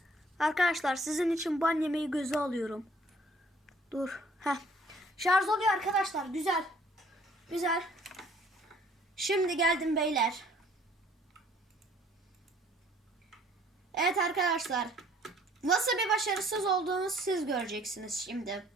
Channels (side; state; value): both; normal; correlation 0.58